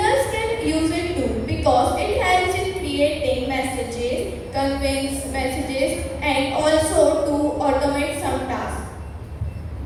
sequence messages and also to automate some tasks.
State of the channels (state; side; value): identical; both; correlation 1.00